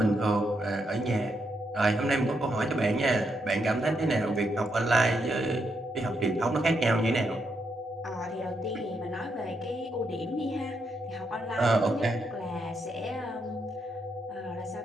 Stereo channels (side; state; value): both; normal; correlation 0.80